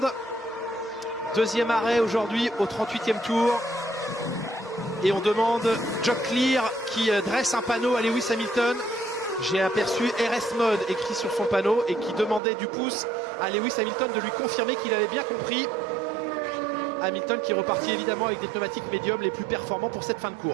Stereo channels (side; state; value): left; drops out; at 12.4 s